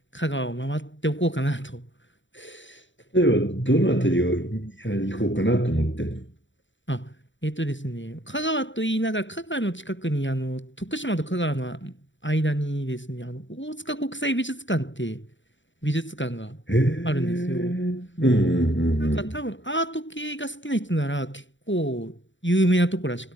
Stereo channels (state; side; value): late; right; 0.54 ms